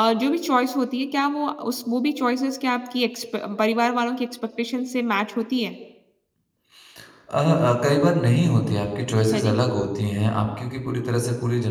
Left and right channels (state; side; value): identical; both; correlation 1.00